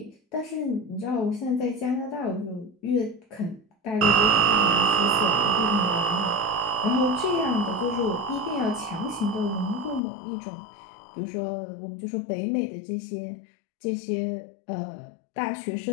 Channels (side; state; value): right; drops out; at 10.0 s